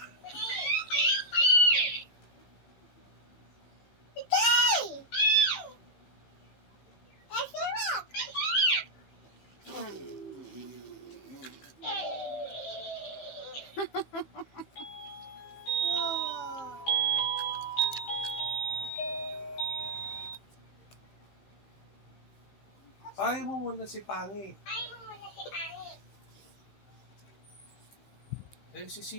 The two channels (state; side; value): late; right; 15 ms